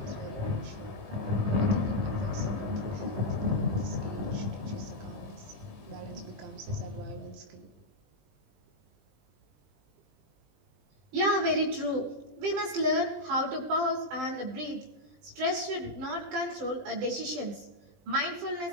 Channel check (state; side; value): late; left; 20 ms